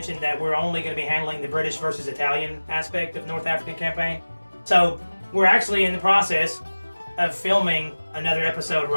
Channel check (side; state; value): both; inverted; correlation -1.00